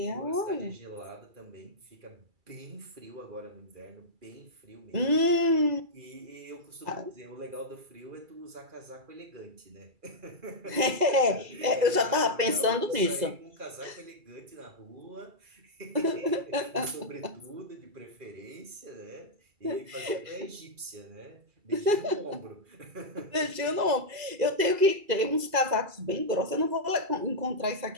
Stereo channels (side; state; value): left; late; 2.3 ms